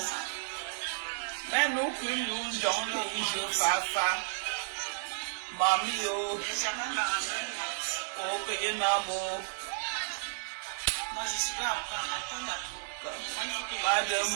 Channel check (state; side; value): silent; left; 56 dB below the other